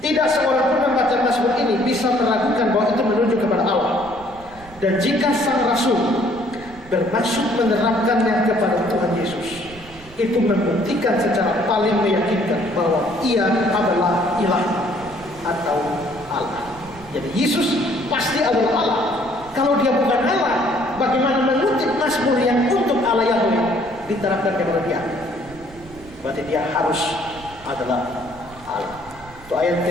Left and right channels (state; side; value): noise; right; rumble, 20 dB below the sound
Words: seorang pun membaca Mazmur ini bisa meragukan bahwa itu menunjuk kepada Allah. Dan jika sang rasul bermaksud menerapkannya kepada Tuhan Yesus, itu membuktikan secara paling meyakinkan bahwa ia adalah ilah atau Allah. Jadi Yesus pasti adalah Allah. Kalau dia bukan Allah, bagaimana mengutip Mazmur yang untuk Allah Yahweh diterapkan kepada dia? Berarti dia harus adalah Allah. Itu ayat